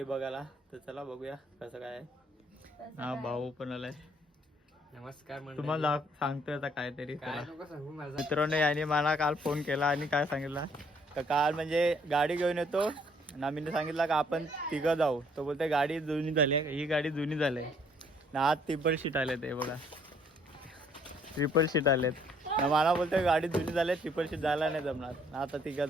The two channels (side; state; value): both; normal; correlation 0.64